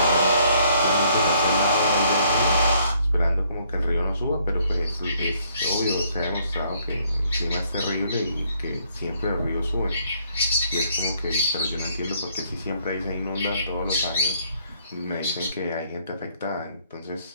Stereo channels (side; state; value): both; inverted; correlation -0.67